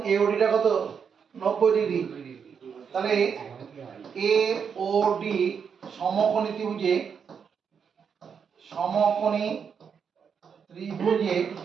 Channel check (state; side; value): quieter; left; 6.8 dB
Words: এওডিটা কত? 90 ডিগ্রি। তাহলে এওডি সমকোণী ত্রিভুজে